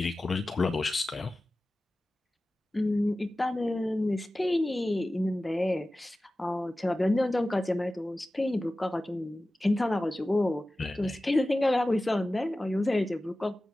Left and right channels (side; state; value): both; normal; correlation 0.96